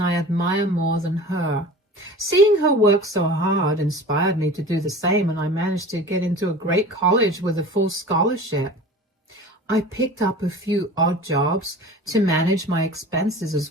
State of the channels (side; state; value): both; normal; correlation 0.38